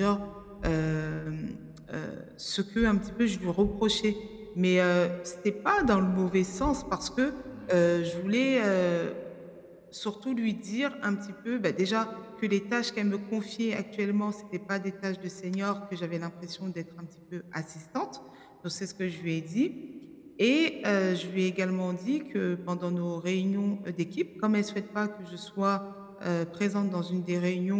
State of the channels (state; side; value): identical; both; correlation 1.00